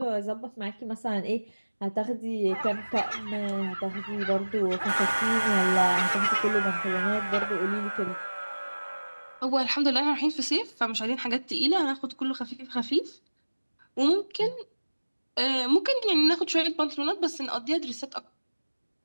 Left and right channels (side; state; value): both; inverted; correlation -1.00